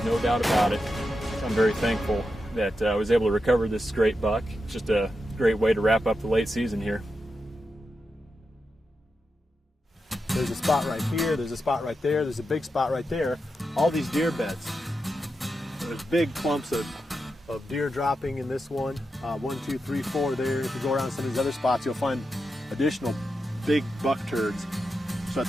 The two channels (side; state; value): both; normal; correlation 0.88